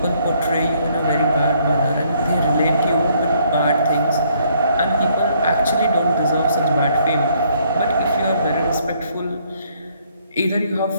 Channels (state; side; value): inverted; both; correlation -0.67